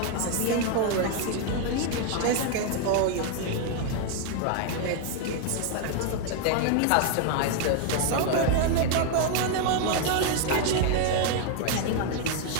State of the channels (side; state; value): both; different; correlation 0.00